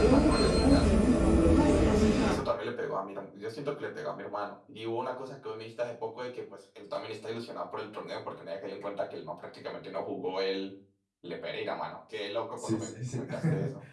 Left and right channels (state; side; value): identical; both; correlation 1.00